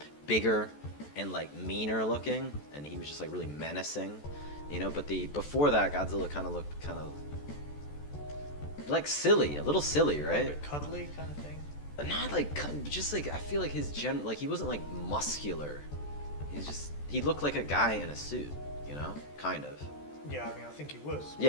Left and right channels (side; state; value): right; late; 14 ms